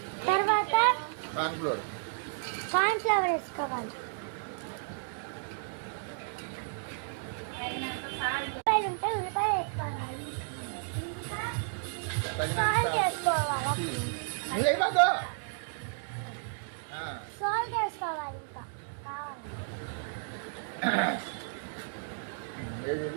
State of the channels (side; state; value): left; silent; digital silence